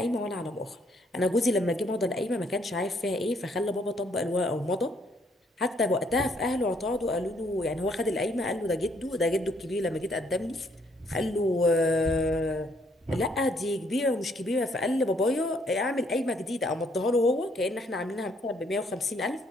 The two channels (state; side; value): normal; both; correlation 0.68